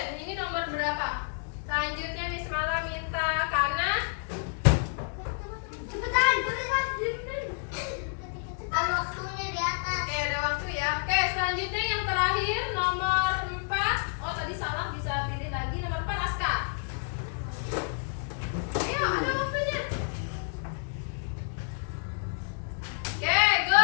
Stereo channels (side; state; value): right; silent; 58 dB below the other